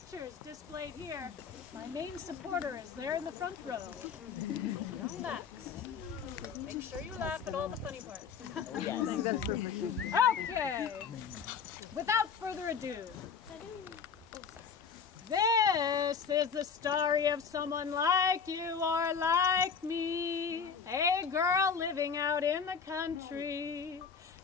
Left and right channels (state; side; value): quieter; right; 6.3 dB